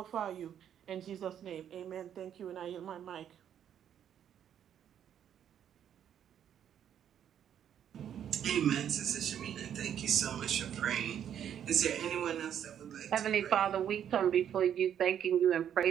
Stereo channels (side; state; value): left; quieter; 9.5 dB